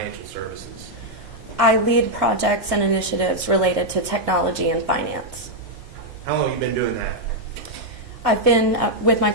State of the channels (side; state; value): both; normal; correlation -0.03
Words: services? I lead projects and initiatives related to technology and finance. How long have you been doing that? I've been with my